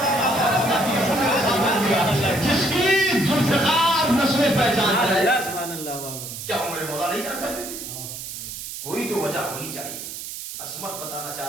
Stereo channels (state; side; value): noise; right; hiss, 9 dB below the sound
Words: جس کی ذوالفقار نسلیں پہچان ہے, کیا ہمارے مولا نہیں جان سکتے تھے؟ کوئی تو وجہ ہونی چاہیے. عصمت بتانا